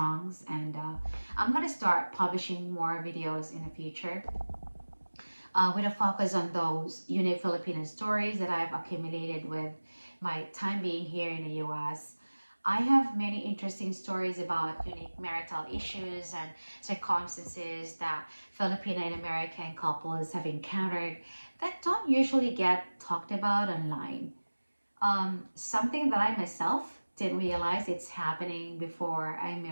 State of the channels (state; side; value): inverted; both; correlation -1.00